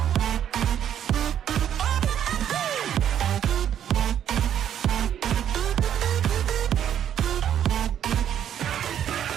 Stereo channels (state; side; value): quieter; left; 9.9 dB